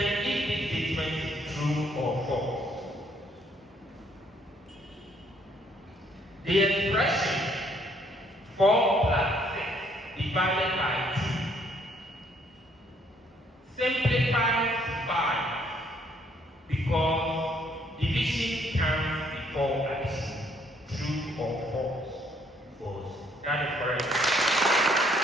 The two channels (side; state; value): both; normal; correlation 0.66